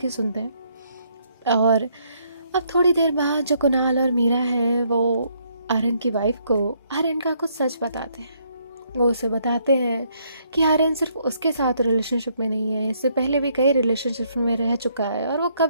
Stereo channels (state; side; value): inverted; both; correlation -0.71